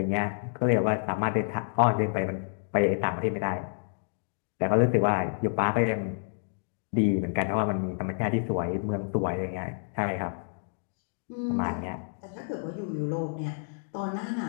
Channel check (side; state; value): right; silent; digital silence